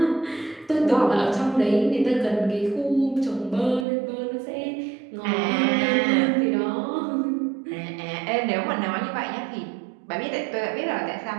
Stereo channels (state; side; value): drops out; left; at 3.9 s